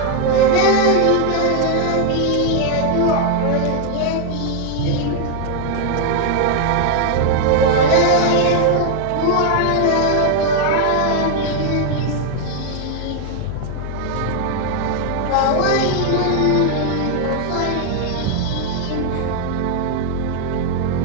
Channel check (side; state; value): both; different; correlation 0.00